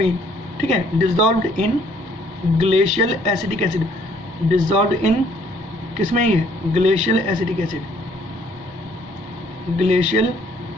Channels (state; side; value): normal; both; correlation 0.63